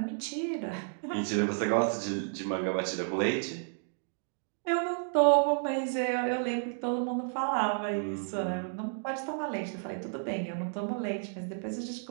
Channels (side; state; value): left; silent; digital silence